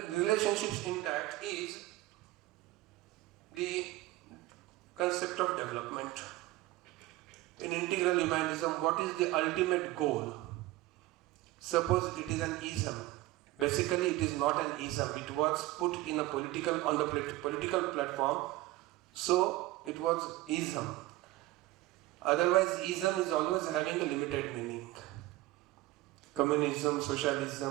intact is the concept of development. In integral humanism, what is the ultimate goal? Suppose it is an ism. Basically, it is not an ism. It was put in a on the political platform, so it was ism. Otherwise, ism is always having a limited meaning. Communism,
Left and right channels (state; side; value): quieter; left; 17.9 dB